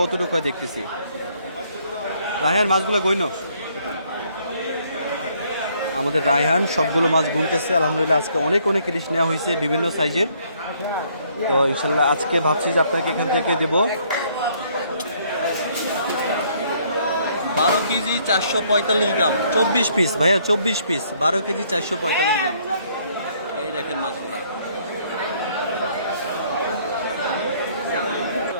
দেখতেছি। রায়হান মাছগুলো গইন, আমাদের রায়হান সবগুলো মাছ গুনতেছে। আলহামদুলিল্লাহ আজকে অনেক অনেক ইলিশ নেওয়া হয়েছে বিভিন্ন সাইজের। তো ইনশাল্লাহ আজকে ভাবছি যে আপনাকে এখান থেকে দেবো 12 কেজি 445 গ্রাম, 24 পিস ভাইয়া, 24 পিস, 12 কেজি 445 গ্রাম। এই দেখেন মাছগুলা,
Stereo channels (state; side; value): inverted; both; correlation -0.66